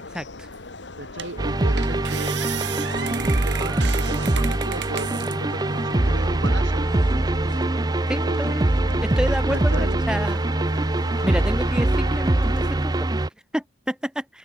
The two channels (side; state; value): both; normal; correlation 0.81